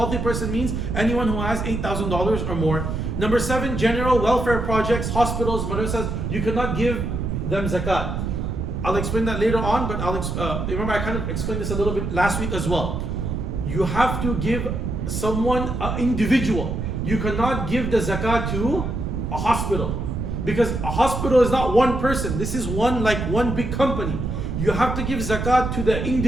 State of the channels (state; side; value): noise; right; rumble, 3 dB below the sound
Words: person means anyone who has $8,000 or more. Number seven, general welfare projects, hospitals, madrasas. You cannot give them zakat. I'll explain that later on, but remember I kind of explained this a little bit last week as well. You have to give someone, an individual. You cannot give the zakat to a hospital, because a hospital is not one person. This is one big company. You have to give zakat to the